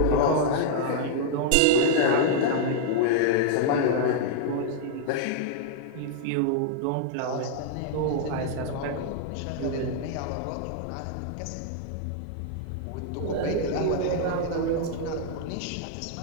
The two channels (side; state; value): both; different; correlation -0.01